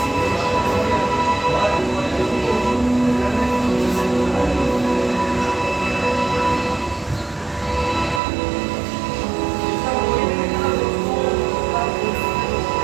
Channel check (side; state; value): left; drops out; at 8.2 s